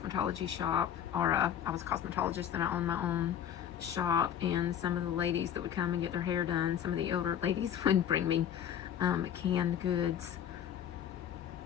shop, or I was a cosmetologist and I owned my own shop, and some of the ladies that would come and get their hair done, some of the older ladies would bring me canned goods,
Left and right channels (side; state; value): right; quieter; 9.6 dB